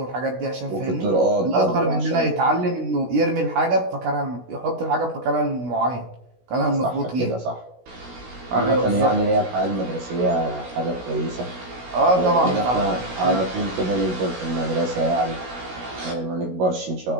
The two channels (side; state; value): left; late; 16 ms